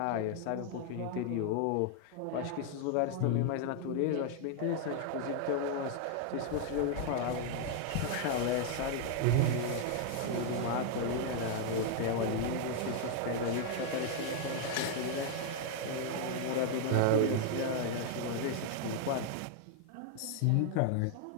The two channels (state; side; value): different; both; correlation 0.00